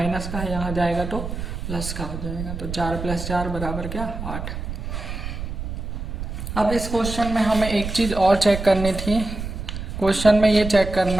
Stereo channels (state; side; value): noise; right; rumble, 6 dB below the sound